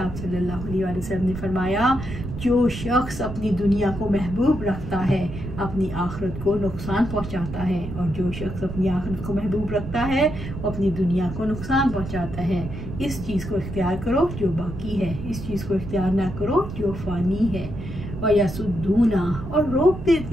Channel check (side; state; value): right; noise; rumble, 9 dB below the sound